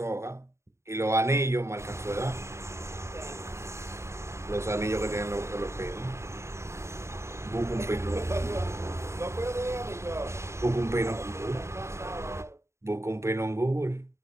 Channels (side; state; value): left; late; 0.13 ms